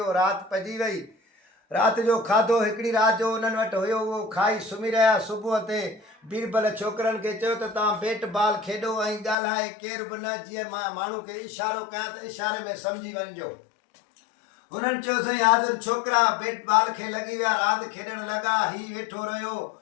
राति पइजी वई। राति जो खाधो हिकिड़ी राति जो उन्हनि वटि हुयो, उहो खाई सुम्ही रहिया। सुबुह ते बीरबल छोकिरनि खे चयो त तव्हां बेट बाल खेॾो ऐं ॻाल्हाए केर बि न, जीअं मां माण्हू खे इशारो कयां त इशारे में सम्झी वञिजो। उन्हनि चयो साईं हाज़िर छोकिरा बेट बाल खे लॻी विया, रांदि खेॾणु लॻा। हीउ वेठो रहियो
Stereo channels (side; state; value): right; drops out; at 9.3 s